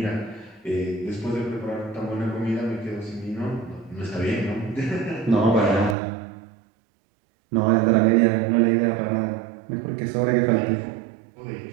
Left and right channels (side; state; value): left; drops out; at 6.0 s